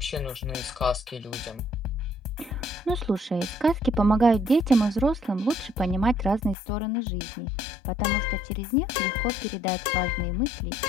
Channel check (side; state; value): right; drops out; at 6.6 s